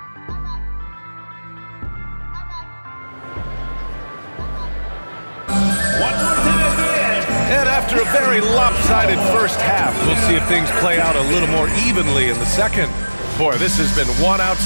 And after a very lopsided first half, we'll see if things play out a little more evenly in the second. Boy, this has been one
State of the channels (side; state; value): both; inverted; correlation -1.00